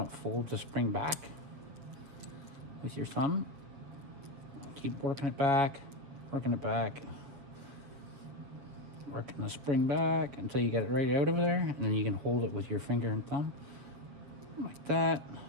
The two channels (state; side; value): late; left; 7.7 ms